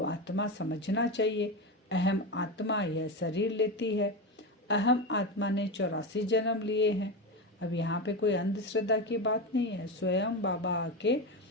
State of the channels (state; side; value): normal; both; correlation 0.18